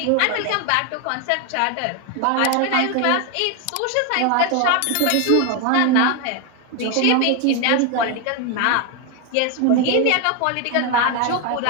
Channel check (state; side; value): different; both; correlation 0.01